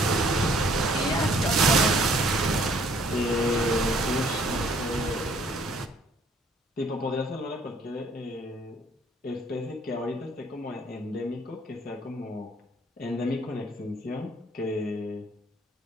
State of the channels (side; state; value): both; normal; correlation 0.61